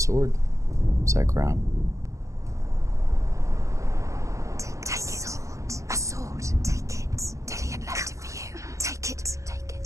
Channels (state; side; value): late; left; 0.15 ms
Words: Is that Grom? Take it. A sword. Take it. Dillion left it for you. Take it. Take